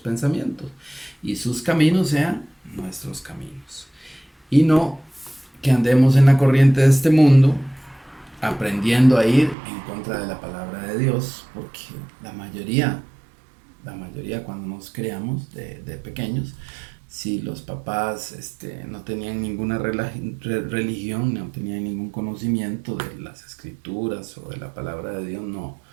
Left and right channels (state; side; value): drops out; left; at 9.6 s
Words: y sus caminos sean nuestros caminos. Y no que andemos en la corriente de este mundo aprendiendo a ir en contra de la palabra de Dios, porque la mayoría cuando nos creamos de pequeños, si los papás no tenían ninguna religión, no tenían ningún conocimiento de las escrituras o de la palabra de Dios,